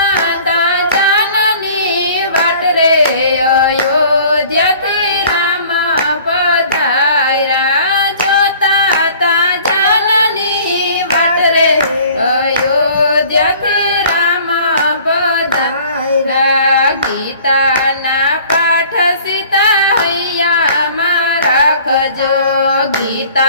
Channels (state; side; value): inverted; both; correlation -0.50